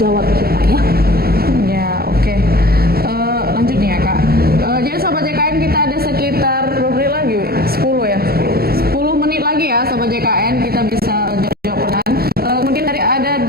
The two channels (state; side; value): late; left; 0.45 ms